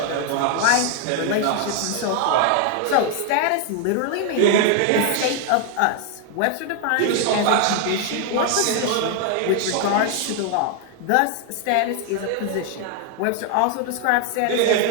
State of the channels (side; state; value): both; different; correlation 0.00